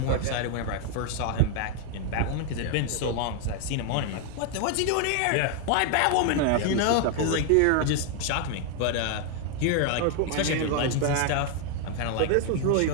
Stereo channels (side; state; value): both; different; correlation 0.00